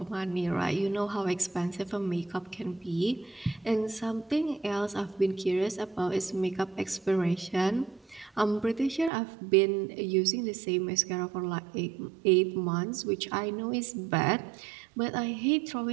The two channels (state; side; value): drops out; left; at 9.1 s